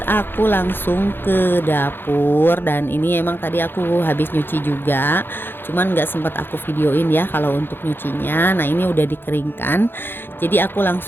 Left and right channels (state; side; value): late; right; 0.10 ms